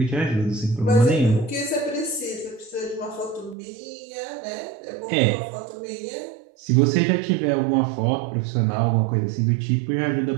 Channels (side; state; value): left; drops out; at 3.6 s